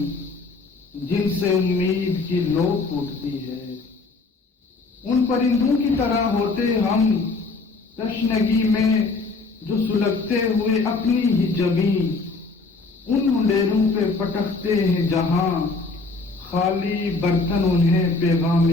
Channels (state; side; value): quieter; right; 3.8 dB